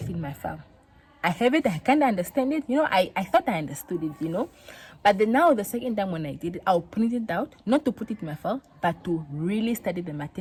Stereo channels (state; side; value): identical; both; correlation 1.00